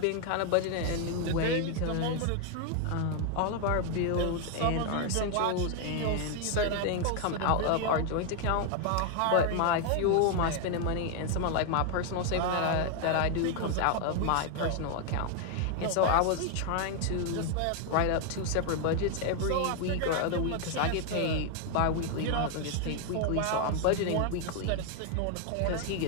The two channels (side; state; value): both; different; correlation 0.00